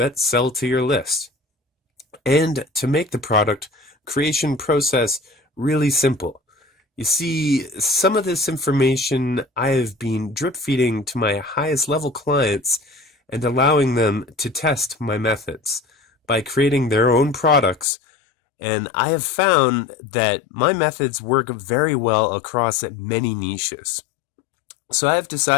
sell to your list, and to make the product creation process really simple. You see, some of this information I have been drip feeding to my highest level clients and allowing them to test my methods by creating their own products. And I have found that my methods work very well across many niches. So I have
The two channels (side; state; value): right; drops out; at 17.9 s